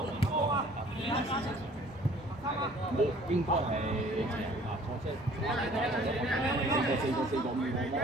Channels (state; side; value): normal; both; correlation 0.53